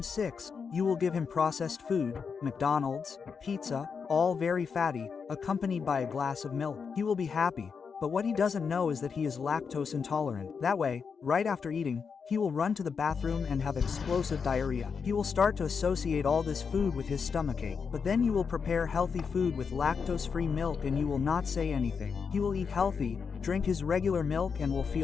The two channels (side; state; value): right; quieter; 5.9 dB